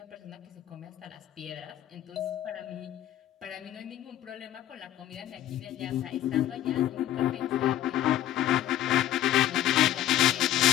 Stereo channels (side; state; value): right; quieter; 12.7 dB